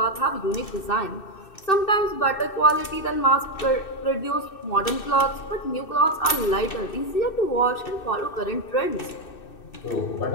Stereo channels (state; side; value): late; right; 2.6 ms